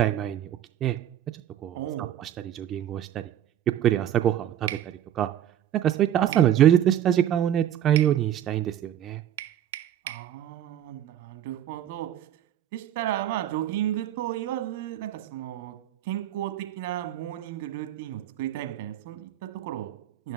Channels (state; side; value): quieter; left; 11.1 dB